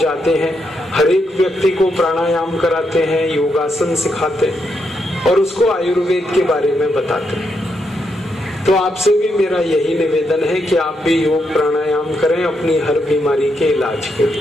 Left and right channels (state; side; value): normal; both; correlation 0.81